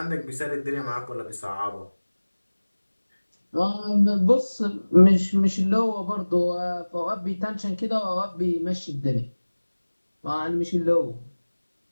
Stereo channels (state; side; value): inverted; both; correlation -1.00